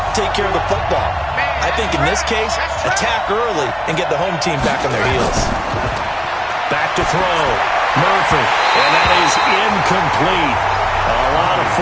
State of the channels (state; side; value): identical; both; correlation 1.00